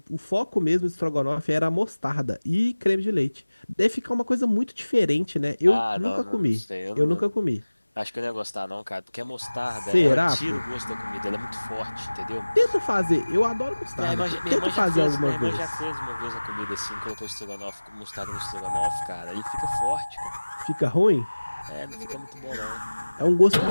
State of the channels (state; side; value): inverted; both; correlation -1.00